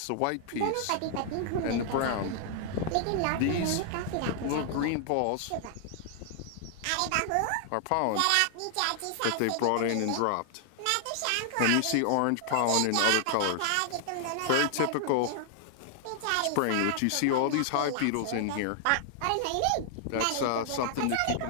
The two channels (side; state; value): both; different; correlation -0.01